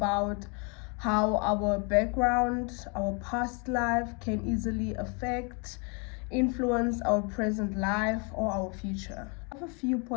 how our background, our past life can easily affect, influence our present life or our future. I have a few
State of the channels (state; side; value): quieter; right; 34.5 dB